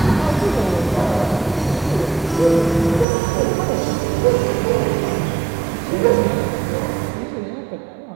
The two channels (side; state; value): left; drops out; at 3.1 s